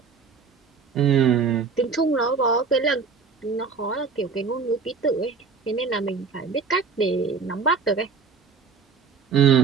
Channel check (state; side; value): quieter; left; 5.2 dB